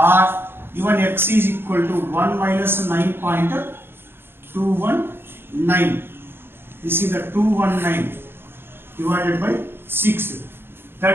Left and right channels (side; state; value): left; late; 0.11 ms